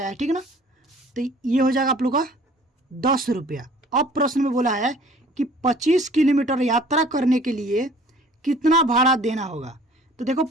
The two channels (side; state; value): both; normal; correlation 0.52